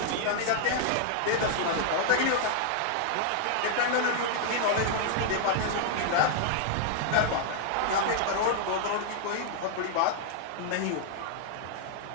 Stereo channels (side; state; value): both; different; correlation -0.01